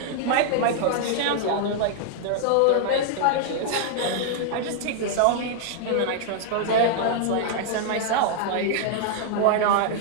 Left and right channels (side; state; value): both; different; correlation -0.01